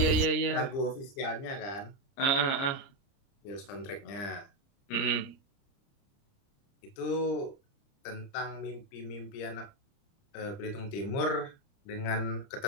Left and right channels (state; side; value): late; right; 30 ms